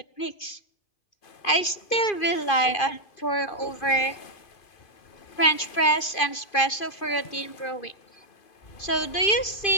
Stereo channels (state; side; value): late; right; 2.5 ms